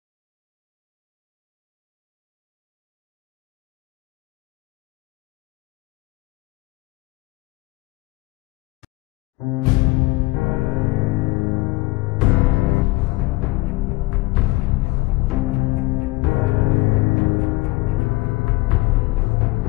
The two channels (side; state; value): right; quieter; 20.3 dB